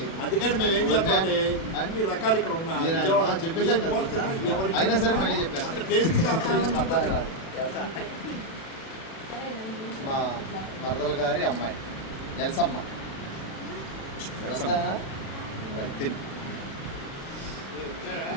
అందుకని మేము ఏం చేస్తామంటే అన్ని రకాలు ఇక్కడ ఉన్నాయి చెప్పేసాం కదా, అయినా సరే మళ్ళీ చెప్పేస్తాను. మా మరదల గారి అమ్మాయి ఎల్సమ్మ. తిని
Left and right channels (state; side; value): late; right; 36 ms